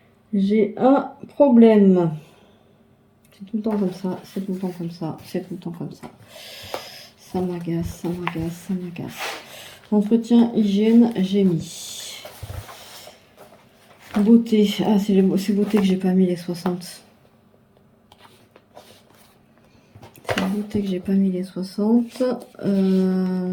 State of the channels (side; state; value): both; identical; correlation 1.00